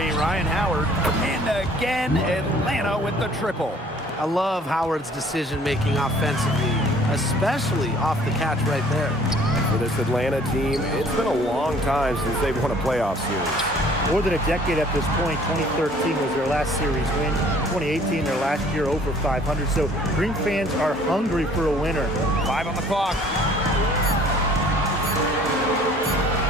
Ryan Howard. And again, Atlanta with the triple. I love Howard's decision-making offensively, especially off the catch right there. For this Atlanta team, it's been a long time since they've won a playoff series. More than a decade at this point. 2013 was their last series win. 2018, their last year over 500. So Dream fans are hungry for a winner. 5 on the clock.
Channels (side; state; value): both; normal; correlation 0.55